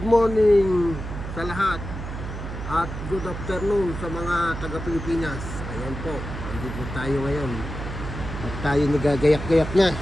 sa lahat. At good afternoon sa mga taga-Pilipinas. Ayan po, andito tayo ngayon. At tayo nagagayak-gayak na.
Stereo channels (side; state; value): right; noise; hum, 7 dB below the sound